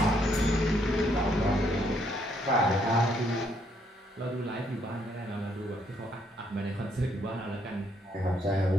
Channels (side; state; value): both; normal; correlation 0.71